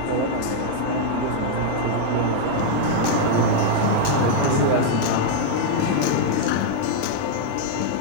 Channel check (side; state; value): both; different; correlation -0.01